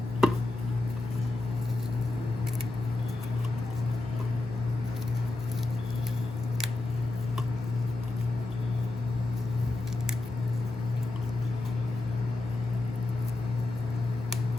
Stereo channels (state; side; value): quieter; right; 3.1 dB